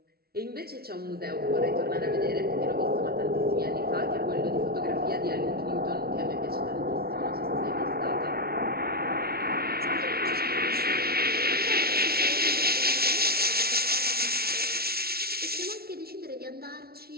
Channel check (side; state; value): left; late; 0.44 ms